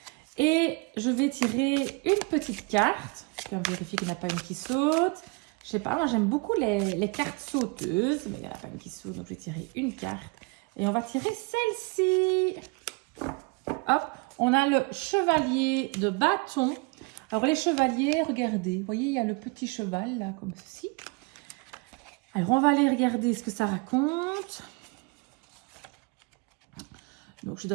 Et je vais tirer une petite carte. Je vais vérifier qu'il n'y en a pas une qui saute. Je sais pas, moi j'aime beaucoup les cartes sauteuses, mais il n'y en a pas une qui saute, donc je vais tirer une carte. Et on va tirer celle-ci. Hop, on a le chevalier de bâton. Alors les chevaliers, regardez, vous voyez, il y a le petit cheval là, comme ceci. Alors on va aller regarder ce que ça raconte. Donc je suis dans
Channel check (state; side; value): quieter; left; 27.4 dB